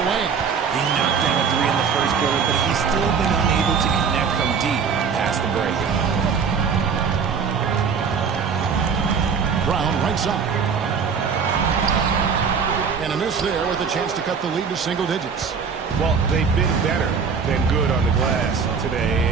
wing. He knocked down a 3 in the first quarter, but he's still been unable to connect from deep past the break. Brown right side. And a miss there with a chance to cut the lead to single digits. Well, they've been better than good on the glass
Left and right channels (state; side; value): quieter; left; 6.0 dB